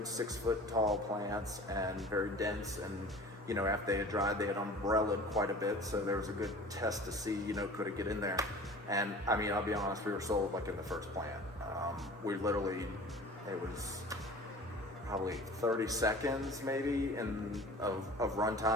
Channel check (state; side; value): normal; both; correlation 0.42